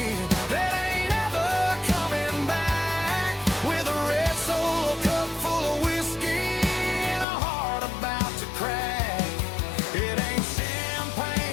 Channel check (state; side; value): drops out; right; at 7.2 s